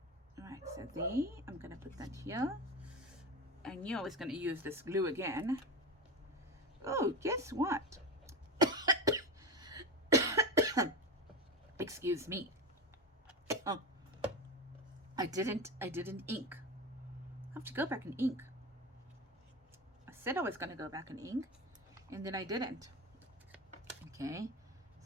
Alright, so there, I'm going to put that here. I knew I was going to use this glue again. Oh, guess what? Excuse me. Oh, I didn't ink. I have to go back and ink. I said I was going to go back and ink, and then I didn't. Okay,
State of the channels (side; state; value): both; normal; correlation 0.22